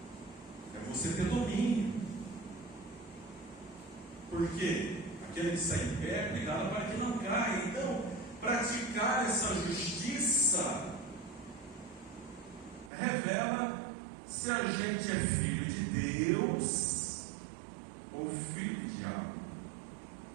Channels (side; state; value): left; drops out; at 12.9 s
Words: É você ter domínio. Porque aquele que está em pé, cuidado para que não caia. Então, praticar essa justiça revela se a gente é filho de Deus ou filho do diabo.